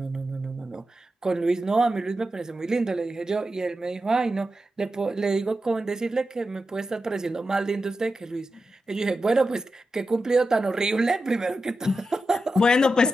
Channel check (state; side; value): normal; both; correlation 0.91